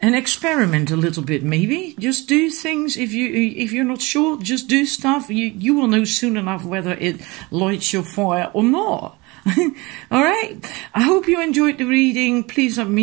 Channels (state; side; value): quieter; left; 24.2 dB